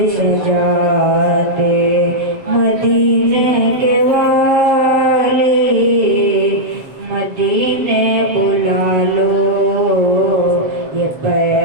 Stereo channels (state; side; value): late; left; 7.2 ms